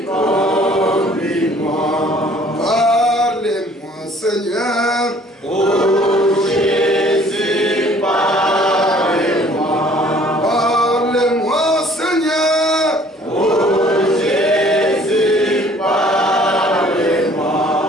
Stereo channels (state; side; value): normal; both; correlation 0.55